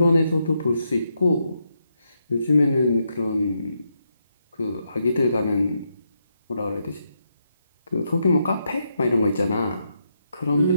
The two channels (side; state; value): both; inverted; correlation -0.81